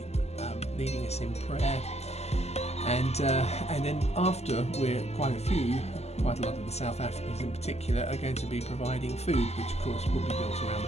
leading us in prayer. And then after, we're quite a lot of the South Africans in particular are going to be providing food, which of course will be built around the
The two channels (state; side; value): late; right; 0.31 ms